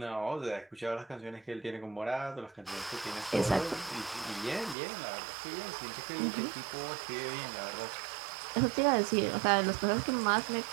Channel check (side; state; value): left; drops out; at 4.8 s